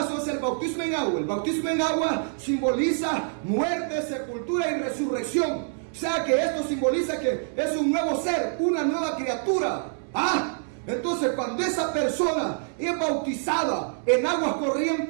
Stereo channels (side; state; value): left; silent; 59 dB below the other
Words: es el bautismo en agua. El bautismo en agua simboliza muerte, sepultura y resurrección. O sea que esto simboliza que es un nuevo ser, una nueva criatura. Entonces cuando esa persona es bautizada en aguas